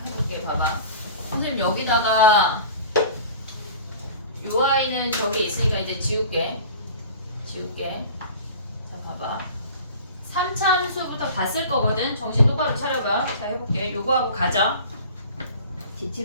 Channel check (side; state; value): both; inverted; correlation -0.41